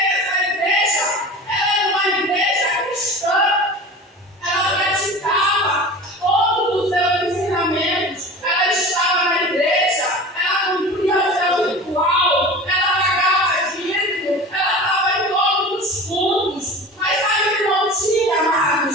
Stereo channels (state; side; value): normal; both; correlation 0.36